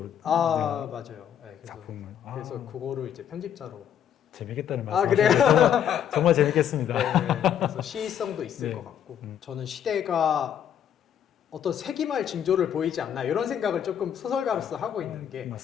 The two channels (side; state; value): right; quieter; 9.4 dB